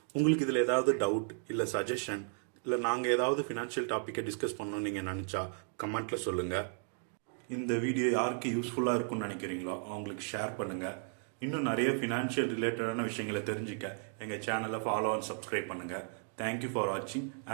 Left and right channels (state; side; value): silent; left; 55 dB below the other